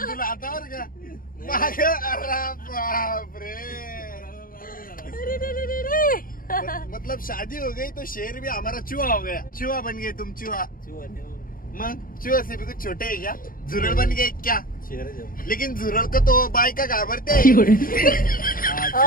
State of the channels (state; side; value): late; right; 0.41 ms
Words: तुला हातावर का माग. अरे बापरे, मतलब शादी हो गई तो शेर भी हमारा चूहा हो गया. चूहा बन गए तुम, चूहा. मग चूहा से भी कुछ छोटे है क्या? झुरळ बन गए क्या? लेकिन झुरळ को तो बायका घाबरते.